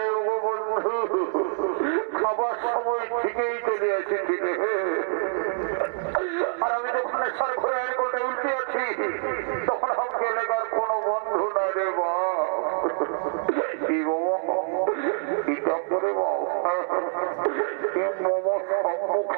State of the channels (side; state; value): left; silent; 61 dB below the other